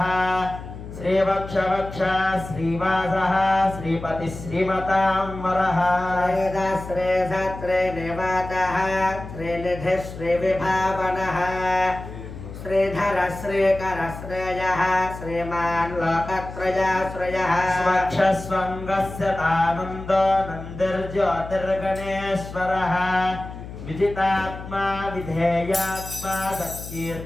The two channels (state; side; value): noise; left; hum, 12 dB below the sound